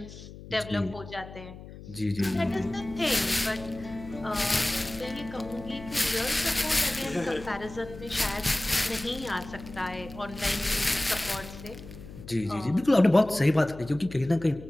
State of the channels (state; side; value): noise; left; hum, 15 dB below the sound